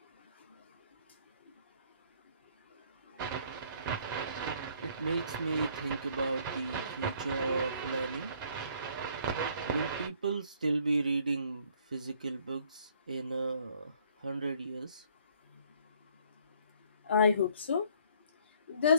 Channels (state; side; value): inverted; both; correlation -0.61